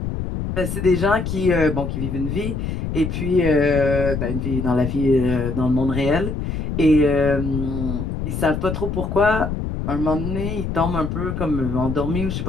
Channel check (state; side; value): noise; left; rumble, 4 dB below the sound